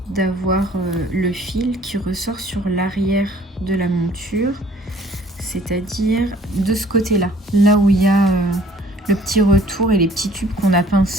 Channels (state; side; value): normal; both; correlation 0.56